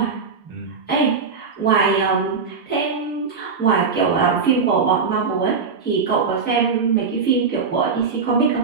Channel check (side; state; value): left; quieter; 5.2 dB